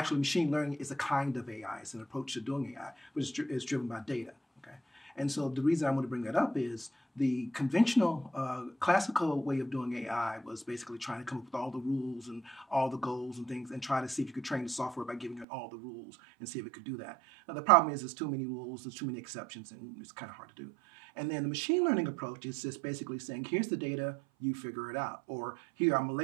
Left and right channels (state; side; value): drops out; left; at 15.5 s